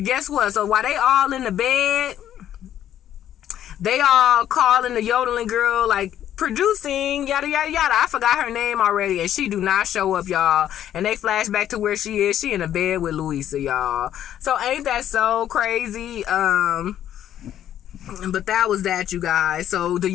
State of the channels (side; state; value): right; quieter; 11.1 dB